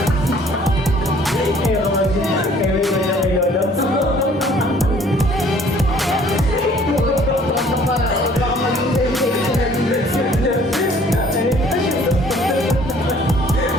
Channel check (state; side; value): normal; both; correlation 0.56